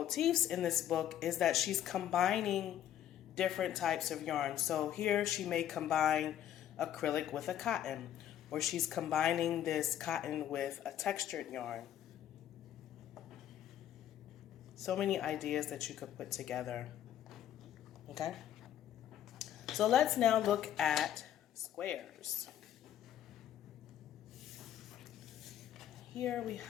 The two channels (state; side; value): quieter; right; 11.0 dB